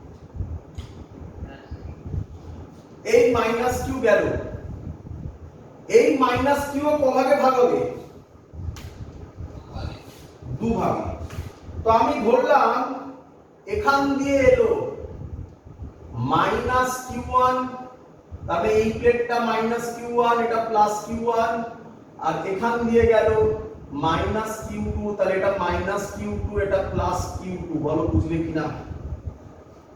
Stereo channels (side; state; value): both; identical; correlation 1.00